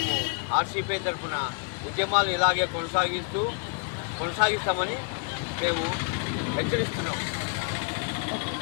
ఆర్సీపీ తరఫున ఉద్యమాలు ఇలాగే కొనసాగిస్తామని మేము హెచ్చరిస్తున్నాం.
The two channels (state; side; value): quieter; right; 36.1 dB